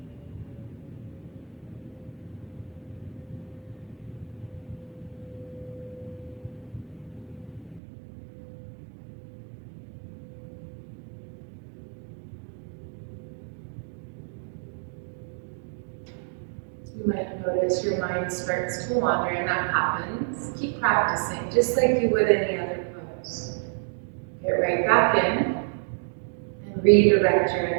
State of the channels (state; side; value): drops out; left; at 7.8 s